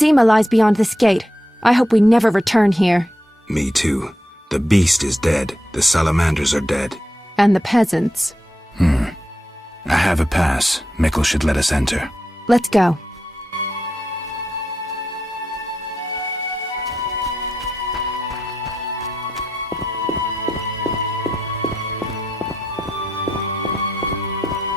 lies beyond this gate. I hope we never return here. Me too. The beast is dead. The salamanders are dead. And the peasants. I have a pass. Mikkel should let us enter. Let's go.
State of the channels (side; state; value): both; normal; correlation 0.85